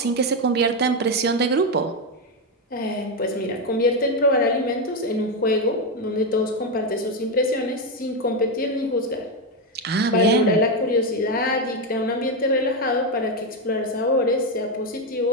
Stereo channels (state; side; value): normal; both; correlation 0.07